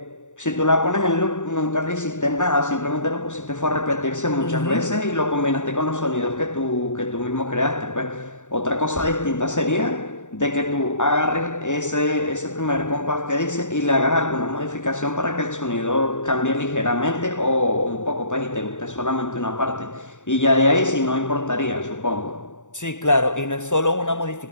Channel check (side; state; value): right; late; 0.85 ms